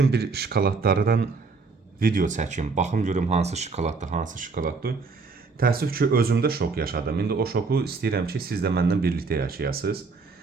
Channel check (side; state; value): left; quieter; 4.3 dB